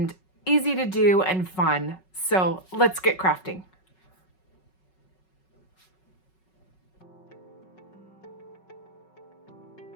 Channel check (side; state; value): right; late; 5.4 ms